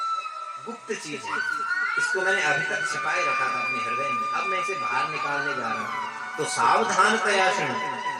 गुप्त चीज है, इसको मैंने अभी तक छिपाए रखा था अपने हृदय में, अब मैं इसे बाहर निकालने जा रहा हूं। तो सावधान प्रयासन,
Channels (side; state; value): both; identical; correlation 1.00